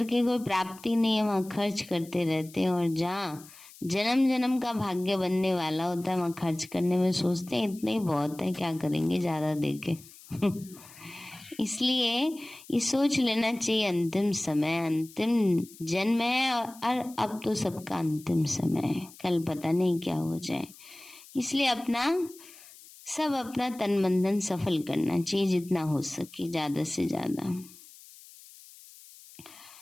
कोई प्राप्ति नहीं है वहां खर्च करते रहते हैं, और जहाँ जन्म जन्म का भाग्य बनने वाला होता है वहां खर्च करने में सोचते हैं इतना ही बहुत है, क्या करेंगे ज्यादा देके। इसलिए ये सोच लेना चाहिए अंतिम समय, अंतिम जन्म है और अब तो सबका अंतिम समय है, कल पता नहीं क्या हो जाए। इसलिए अपना तन मन धन सफल करना चाहिए, जितना हो सके ज्यादा से ज्यादा।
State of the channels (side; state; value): left; noise; hiss, 21 dB below the sound